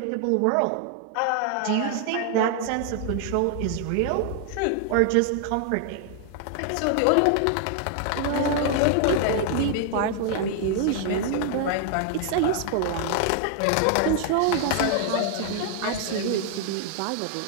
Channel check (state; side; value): different; both; correlation 0.00